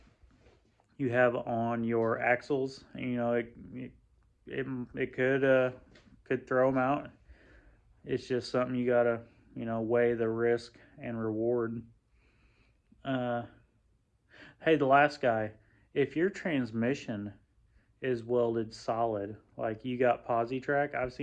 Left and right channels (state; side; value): identical; both; correlation 1.00